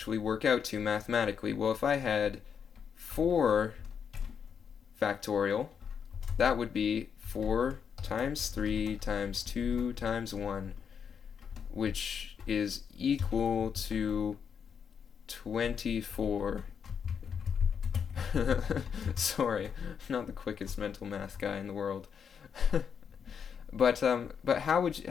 work out to mathematically? Well, if I had 4 factorial, that would be 4 times 3 times 2 times 1, which is equal to 24. Sorry, I'm not the quickest mental math guy in the world. But how would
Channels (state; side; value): quieter; right; 7.1 dB